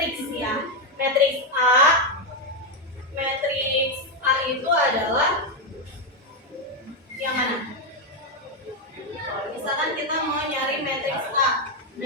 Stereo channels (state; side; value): normal; both; correlation 0.05